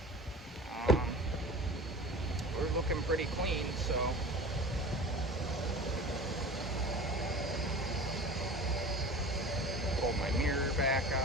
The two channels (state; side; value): normal; both; correlation 0.37